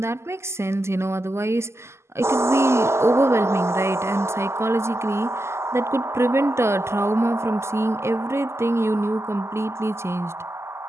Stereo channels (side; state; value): left; late; 0.13 ms